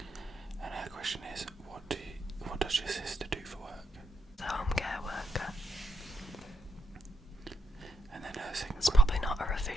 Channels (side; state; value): both; normal; correlation 0.80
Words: And her question is, what does your sister do for work? The home care worker. And then her second It's probably not her